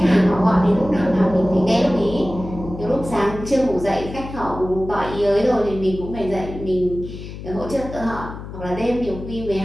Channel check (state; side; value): noise; left; hum, 11 dB below the sound